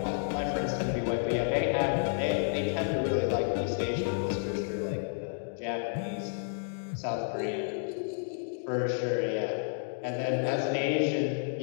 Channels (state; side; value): silent; right; digital silence